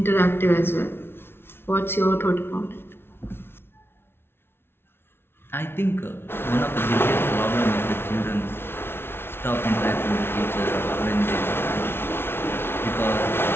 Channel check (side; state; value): right; late; 0.11 ms